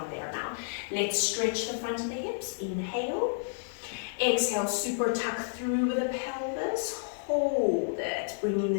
there now. Let's stretch the front of the hips. Inhale. Exhale, super tuck through with the pelvis. Hold it. Bringing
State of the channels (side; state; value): right; silent; digital silence